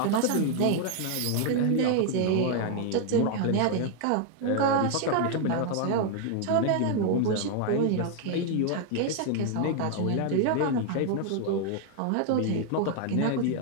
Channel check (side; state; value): both; different; correlation 0.00